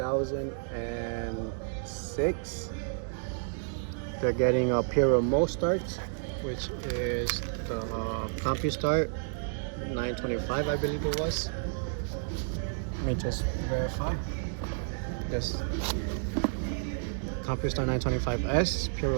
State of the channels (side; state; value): left; silent; digital silence